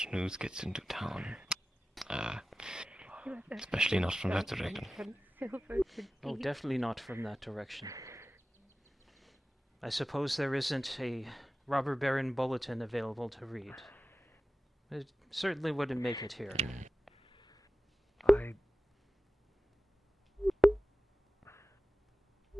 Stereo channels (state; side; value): normal; both; correlation 0.95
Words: news gets into town. Especially not from that direction. Oh, definitely not from that direction. I suppose there isn't a robber baron bulletin available to read. It certainly wouldn't make it here.